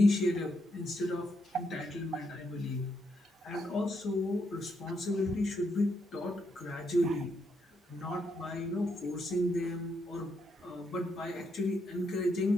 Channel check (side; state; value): both; normal; correlation 0.79